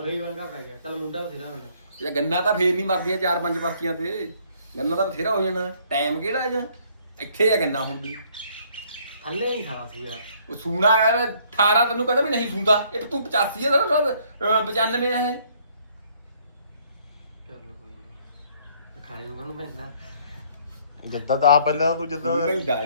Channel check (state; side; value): inverted; both; correlation -0.63